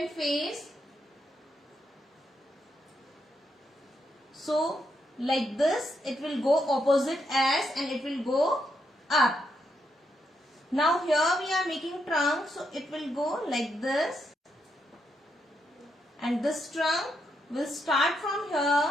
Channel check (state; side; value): normal; both; correlation 0.80